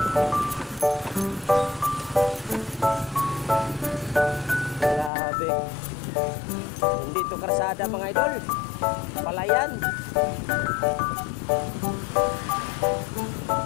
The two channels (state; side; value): drops out; right; at 5.1 s